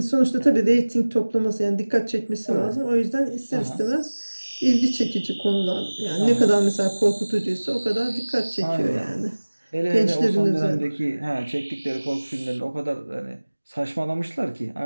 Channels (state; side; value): inverted; both; correlation -1.00